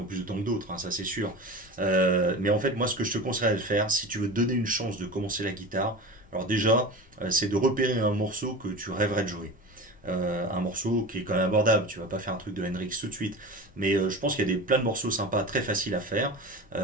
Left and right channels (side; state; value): left; noise; rumble, 28 dB below the sound